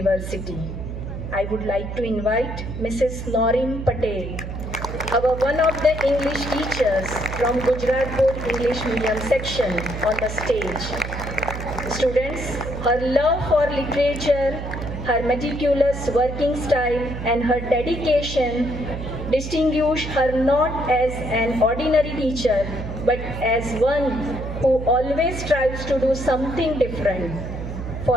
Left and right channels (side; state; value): right; noise; hum, 7 dB below the sound